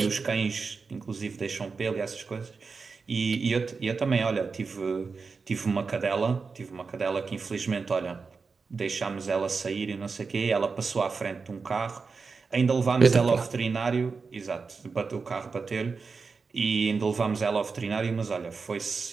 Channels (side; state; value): left; quieter; 4.8 dB